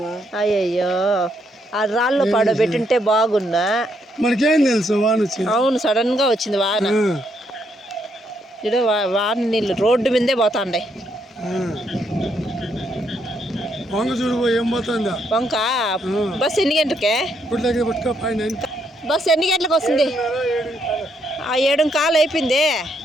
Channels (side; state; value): both; normal; correlation 0.75